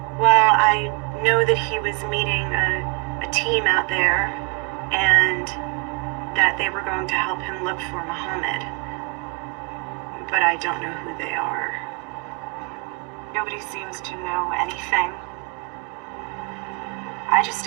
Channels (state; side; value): quieter; left; 29.7 dB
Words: Well, I know that he was meeting a team out there, and that they were going to help him look for Muhammad. But I don't know who they are. Nobody seems to know anything. I just